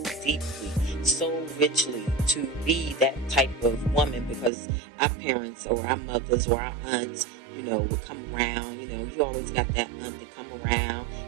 deeply, so richly to be that type of woman, because our parents or our mothers or our aunts, would come around. You always got that aunt that come around,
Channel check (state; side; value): drops out; left; at 4.5 s